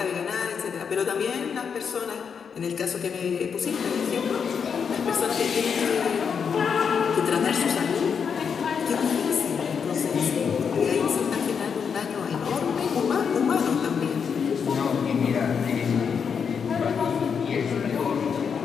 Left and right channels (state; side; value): quieter; right; 6.6 dB